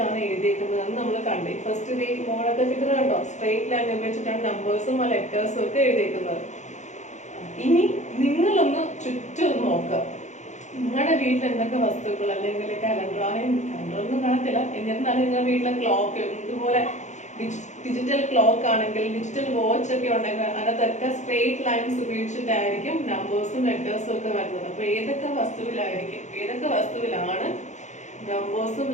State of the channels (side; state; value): right; late; 0.34 ms